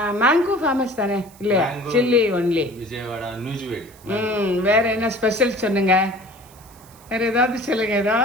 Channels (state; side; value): noise; right; hiss, 25 dB below the sound